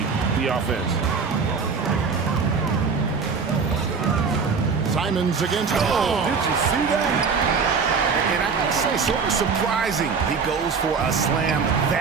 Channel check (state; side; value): quieter; left; 5.3 dB